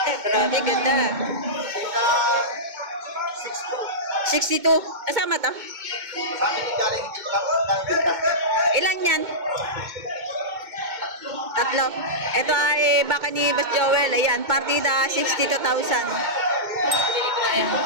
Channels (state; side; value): late; left; 2.2 ms